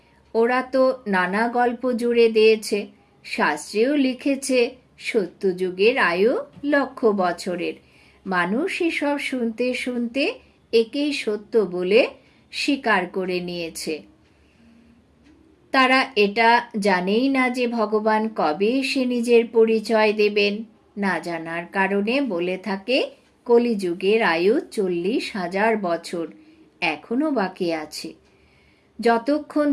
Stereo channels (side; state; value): both; identical; correlation 1.00